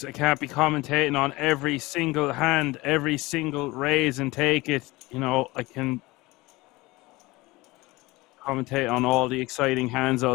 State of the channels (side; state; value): right; quieter; 21.3 dB